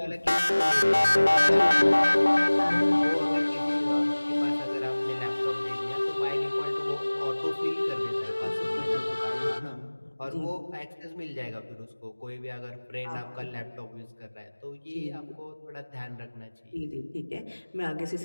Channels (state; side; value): inverted; both; correlation -1.00